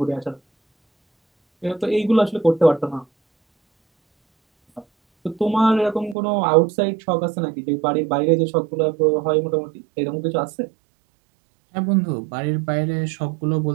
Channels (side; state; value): left; drops out; at 6.2 s